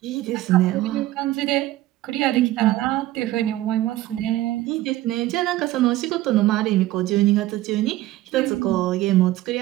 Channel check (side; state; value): left; quieter; 15.8 dB